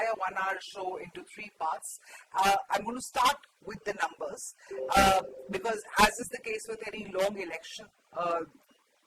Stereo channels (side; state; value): both; identical; correlation 1.00